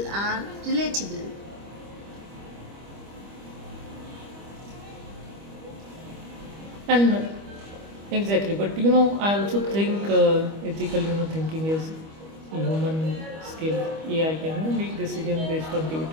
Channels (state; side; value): late; left; 25 ms